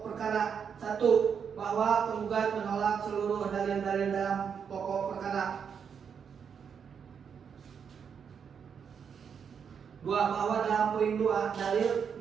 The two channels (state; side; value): quieter; left; 7.0 dB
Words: perkara 1, bahwa penggugat menolak seluruh dalil-dalil dalam pokok perkara. 2, bahwa dalam poin 2 dalil